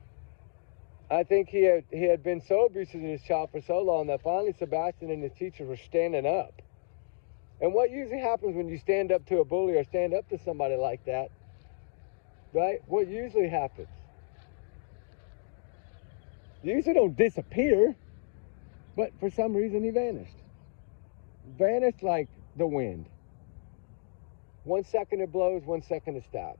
I think he had been so abusive to his child for so long that finally Sebastian and his teachers were standing up. And what usually happens when you stand up to a bully or stand up to somebody like that, right? What usually happens? You usually don't disappear, but for some reason he vanished. Vanished like the wind. 1 second it blows, 1 second it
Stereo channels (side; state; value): right; silent; digital silence